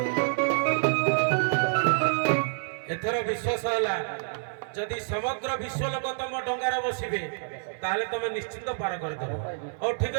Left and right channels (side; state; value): left; silent; 59 dB below the other